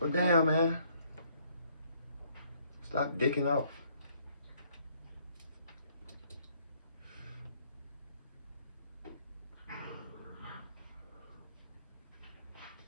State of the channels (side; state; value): both; inverted; correlation -0.65